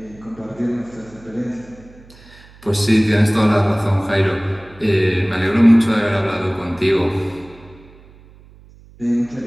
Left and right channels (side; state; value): right; noise; hum, 24 dB below the sound